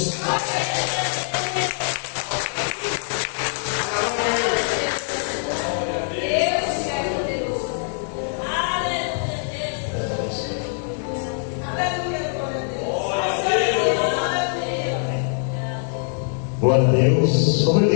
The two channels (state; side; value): silent; right; digital silence